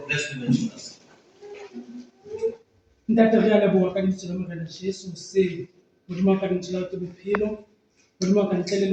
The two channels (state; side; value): identical; both; correlation 1.00